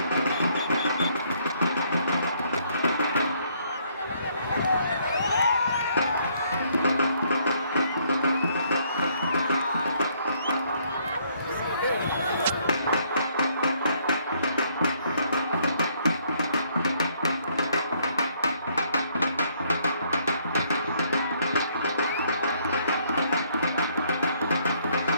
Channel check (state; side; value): inverted; both; correlation -0.68